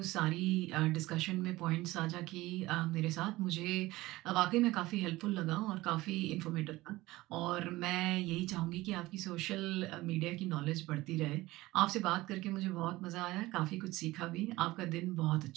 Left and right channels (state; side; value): quieter; left; 18.8 dB